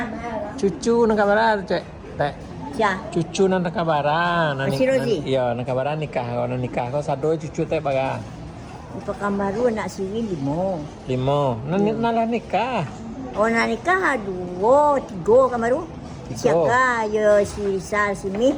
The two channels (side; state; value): both; identical; correlation 1.00